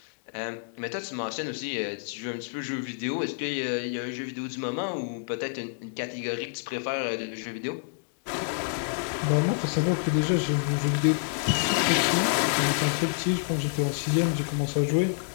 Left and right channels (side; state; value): right; silent; digital silence